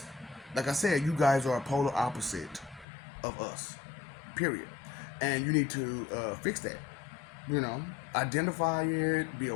like I said, you guys are a polar opposite of us, period. And you need to fix that. Identify it, be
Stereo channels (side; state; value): right; drops out; at 2.9 s